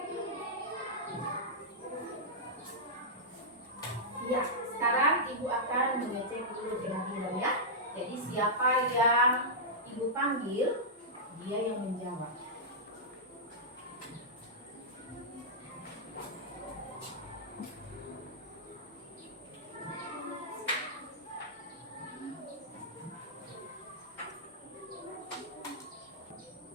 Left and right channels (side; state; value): both; normal; correlation -0.10